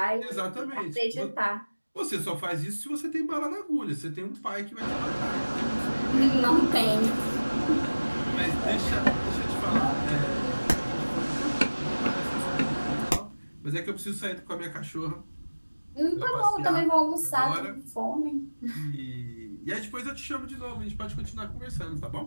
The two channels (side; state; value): both; inverted; correlation -1.00